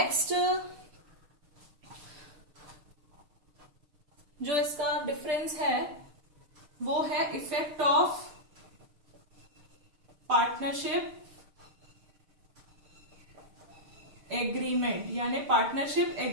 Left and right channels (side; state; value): left; late; 6.6 ms